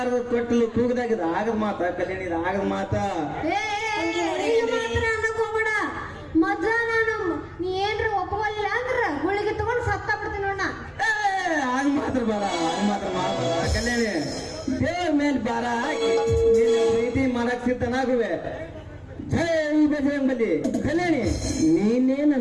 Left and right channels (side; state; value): both; identical; correlation 1.00